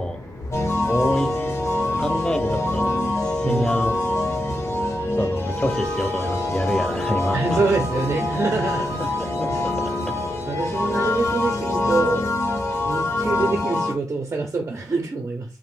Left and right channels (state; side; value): normal; both; correlation 0.85